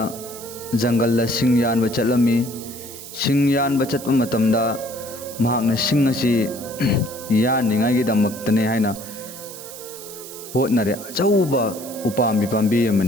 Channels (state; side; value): noise; right; hiss, 13 dB below the sound